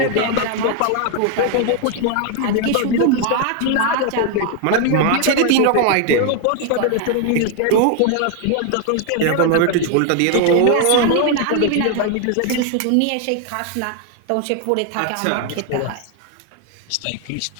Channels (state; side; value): different; both; correlation 0.00